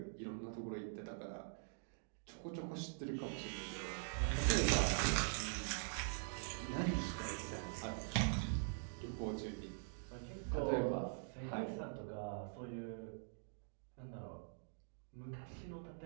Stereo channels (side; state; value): left; silent; digital silence